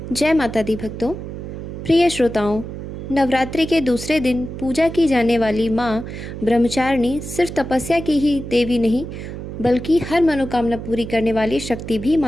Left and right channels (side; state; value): right; noise; hum, 9 dB below the sound